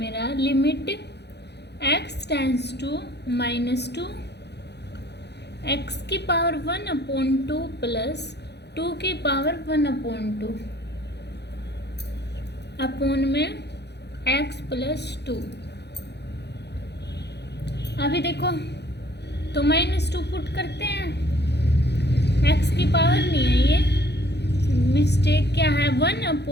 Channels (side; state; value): right; late; 0.49 ms